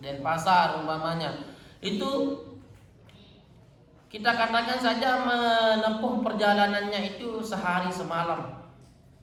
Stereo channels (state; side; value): identical; both; correlation 1.00